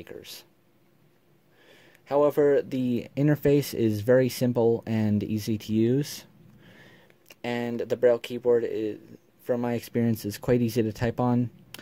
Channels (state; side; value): identical; both; correlation 1.00